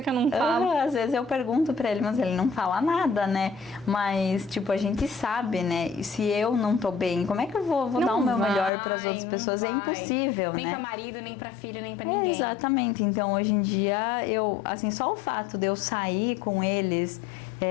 eu não falo? Às vezes eu pergunto pra ele, mas ele não fala nada, né? Mas, tipo, a gente sabe, né? E se eu não tô bem, como é que eu vou dar o meu melhor pras outras pessoas? É impossível, nem né? pra marido, nem pra filho, nem pra ninguém. Exatamente. Então, hoje em dia, assim, só o fato de eu sair com eles...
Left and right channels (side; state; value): right; drops out; at 8.7 s